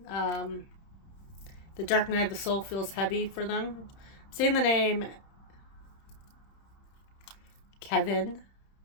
The dark night of the soul feels heavy for them. Saying the name Kevin.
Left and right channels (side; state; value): right; late; 30 ms